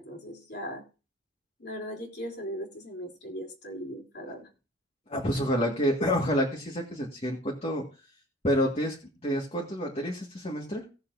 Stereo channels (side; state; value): both; normal; correlation 0.47